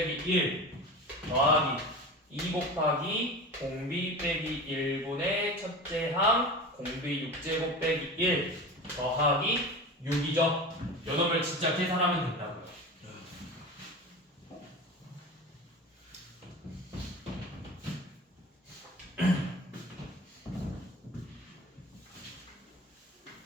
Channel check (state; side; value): normal; both; correlation 0.31